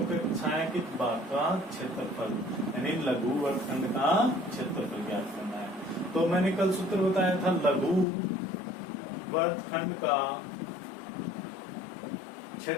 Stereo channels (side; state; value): right; drops out; at 8.1 s